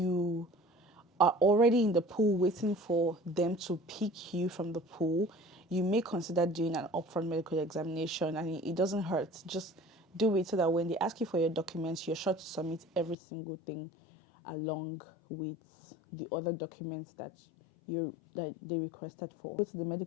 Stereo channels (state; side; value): drops out; right; at 13.2 s